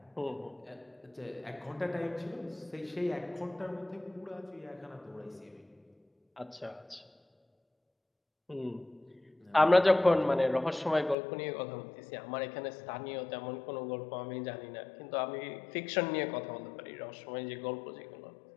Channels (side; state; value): right; drops out; at 11.2 s